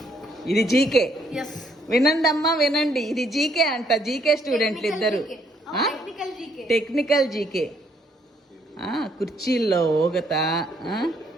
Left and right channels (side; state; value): both; normal; correlation 0.69